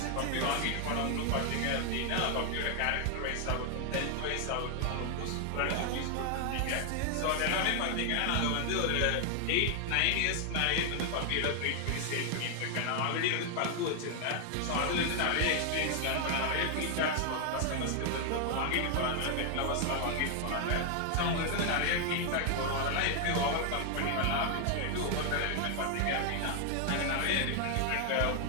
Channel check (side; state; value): both; different; correlation 0.00